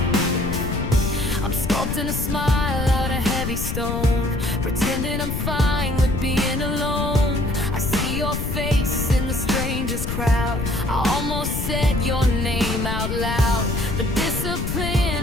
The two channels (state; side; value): noise; left; rumble, 3 dB below the sound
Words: I'm sculpting a smile out of heavy stone, pretending I'm fine with being alone. I see your face in the strangest crowd. I almost said your name out loud, but